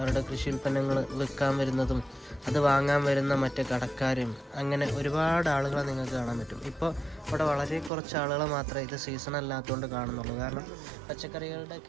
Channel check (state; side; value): drops out; left; at 7.9 s